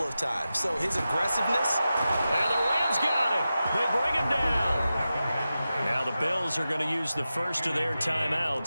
of times. So his aggressiveness. And the Rams got him. They bring him down. Now the Bills are going to use the first of their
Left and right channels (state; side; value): inverted; both; correlation -0.93